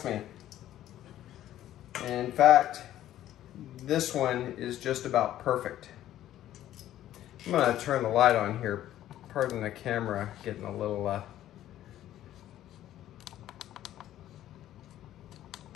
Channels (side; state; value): right; quieter; 12.8 dB